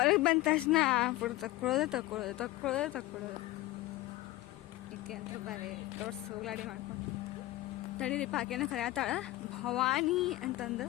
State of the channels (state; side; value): quieter; right; 17.6 dB